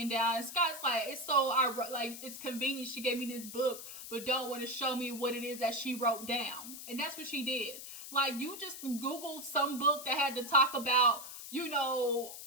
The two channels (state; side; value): noise; left; hiss, 11 dB below the sound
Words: down. And Scott's like, it's convenient she gave me this book, but don't want to show me what it is that she wrote down. And that's what she did. Like, you just Googled some book that had to talk about,